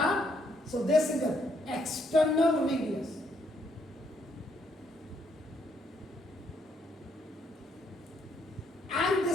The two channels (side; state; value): both; normal; correlation 0.72